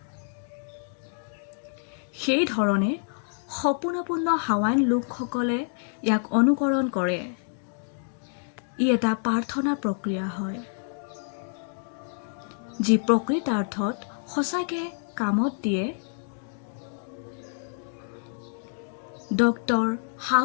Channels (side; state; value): right; silent; 60 dB below the other